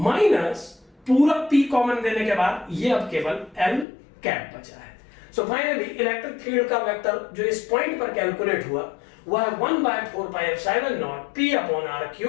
माइनस पूरा P कॉमन देने के बाद ये अब केवल L कैप बचा है। सो फाइनली इलेक्ट्रिक फील्ड का वेक्टर जो इस पॉइंट पर कैलकुलेट हुआ वह है 1/4πε0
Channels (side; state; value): right; drops out; at 3.9 s